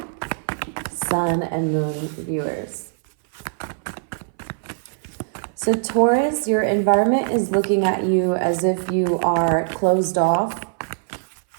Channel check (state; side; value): silent; left; 60 dB below the other